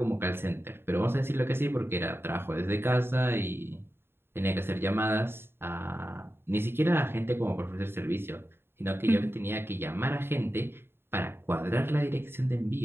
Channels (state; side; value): late; left; 0.11 ms